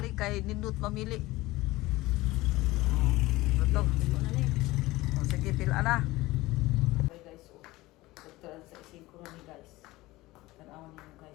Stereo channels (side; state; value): right; quieter; 19.2 dB